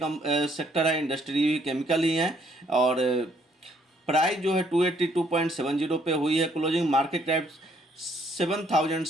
सेक्टर है, इंडस्ट्री केमिकल ही है। और प्राइस जो है 282.70 पे हुई है क्लोजिंग। मार्केट कैप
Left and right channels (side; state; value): both; normal; correlation 0.67